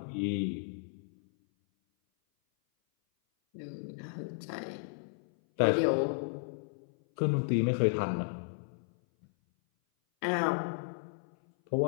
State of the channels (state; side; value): silent; right; 55 dB below the other